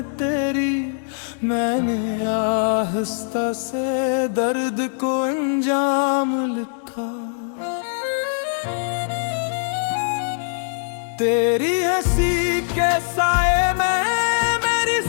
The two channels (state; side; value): silent; right; digital silence